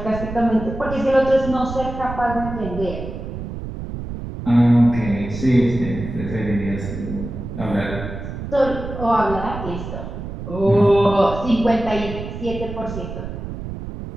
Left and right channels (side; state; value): right; noise; rumble, 8 dB below the sound